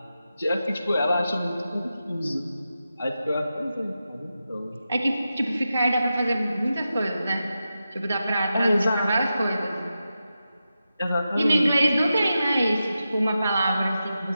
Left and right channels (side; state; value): both; inverted; correlation -0.90